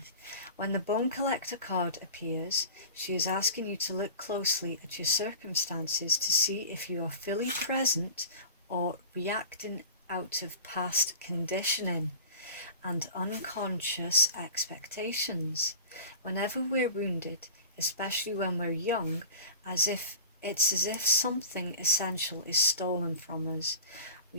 When the Bone Collector card appears, she is asking you to look closely at your circumstances to see if you are fully present or reacting out of past conditioning and unconscious expectations. Whenever we're wounded, especially when we're young, it's as if something essential is stolen from us.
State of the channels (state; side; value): inverted; both; correlation -0.38